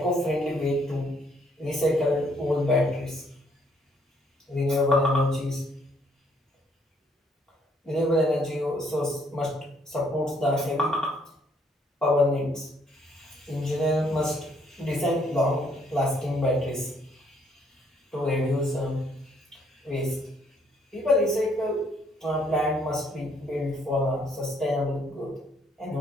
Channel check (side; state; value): both; normal; correlation 0.67